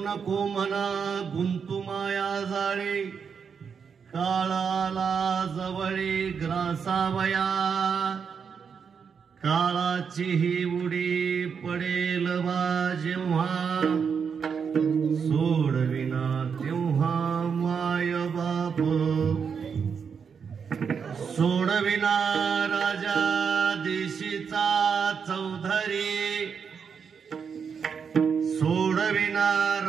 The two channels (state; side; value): quieter; left; 6.4 dB